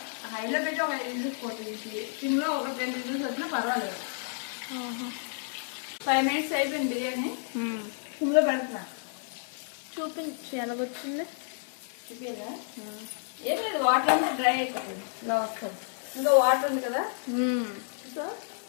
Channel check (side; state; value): right; silent; 58 dB below the other